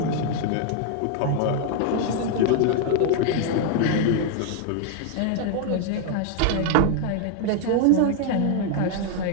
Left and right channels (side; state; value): both; different; correlation 0.00